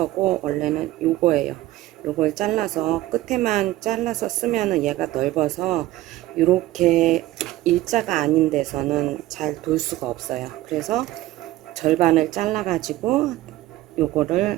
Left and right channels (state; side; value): quieter; left; 16.1 dB